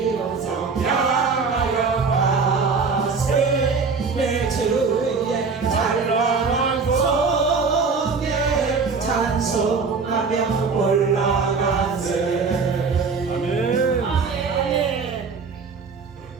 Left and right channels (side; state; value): left; quieter; 4.9 dB